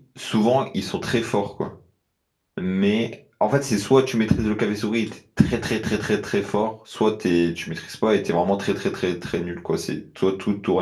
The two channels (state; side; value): identical; both; correlation 1.00